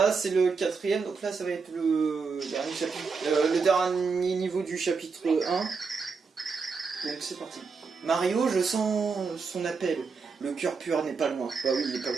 c'est le 4ème, donc là, ça va être le dernier chapitre, le dernier niveau du chapitre 1. Donc, c'est parti. Mario, je sens son appel. Le cœur pur n'est pas loin. Bah oui, il est pas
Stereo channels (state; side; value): quieter; left; 5.0 dB